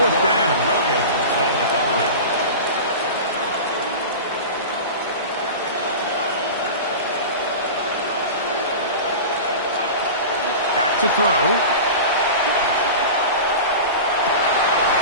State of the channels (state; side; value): inverted; both; correlation -0.30